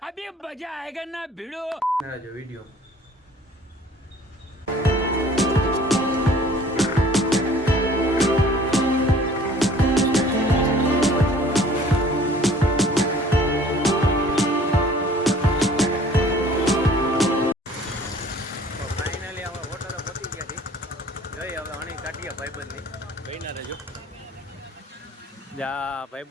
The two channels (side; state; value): both; normal; correlation 0.52